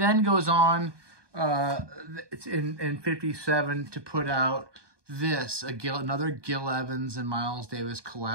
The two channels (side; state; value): left; late; 1.2 ms